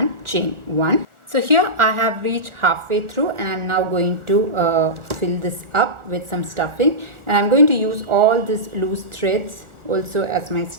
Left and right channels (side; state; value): left; late; 1.4 ms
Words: chain 1. So here I have reached halfway through, and I'm now going to fill this up with some stuffing, and I'm going to use all these loose threads also as my